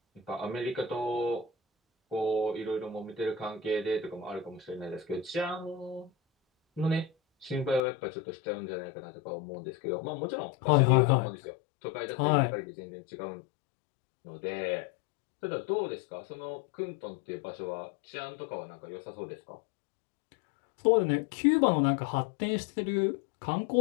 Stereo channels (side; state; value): right; drops out; at 7.8 s